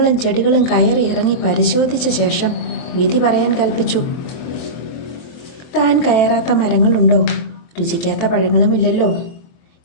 ചെടികളും കയറി ഇറങ്ങി പരിശോധിച്ച ശേഷം വിധി പറയാൻ കൽപ്പിച്ചു. താൻ കയറാത്ത മരങ്ങളുണ്ടോ? രുചിക്കാത്ത പഴങ്ങളുമില്ലല്ലോ.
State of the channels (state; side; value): late; right; 23 ms